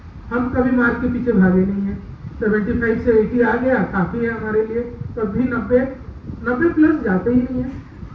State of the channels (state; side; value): identical; both; correlation 1.00